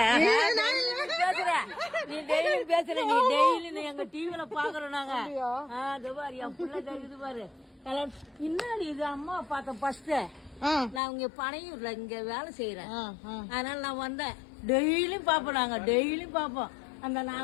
பேசுற நீ டெய்லி பேசுற. நீ டெய்லி எங்க டிவில பாக்குறோம் நாங்க. பாரு என் பிள்ளை தெரியுது பாரு கல்யாணம். இன்னாடி இது அம்மா பார்த்தேன் ஃபர்ஸ்ட். நான் இங்க பனையூர்ல இங்க வேலை செய்யறேன். அதனால நான் வந்தேன். டெய்லியும் பாப்போம், நாங்க டெய்லியும் பாப்போம். அந்த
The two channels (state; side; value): drops out; right; at 11.0 s